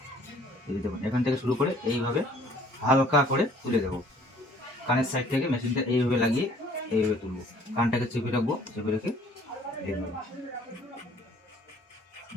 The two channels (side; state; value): both; normal; correlation 0.56